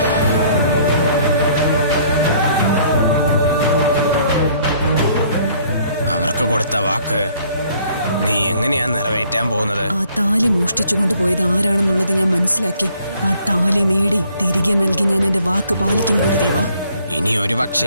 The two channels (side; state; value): both; inverted; correlation -0.61